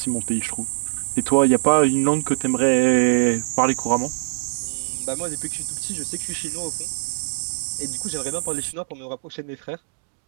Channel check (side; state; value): left; silent; 63 dB below the other